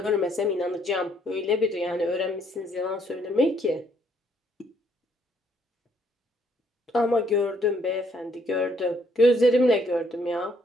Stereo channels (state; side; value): normal; both; correlation 0.68